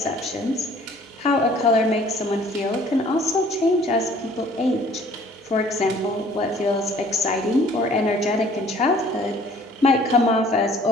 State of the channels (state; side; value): normal; both; correlation 0.55